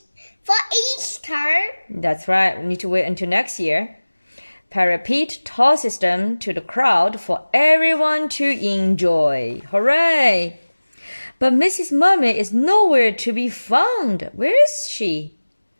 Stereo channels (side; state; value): both; inverted; correlation -1.00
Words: For Easter? That's right. We need to wait until next year. Parrot Pete tosses them to the crowd for everyone to enjoy. Hooray! But Mrs. Mermaid is nowhere to be found. Where is she?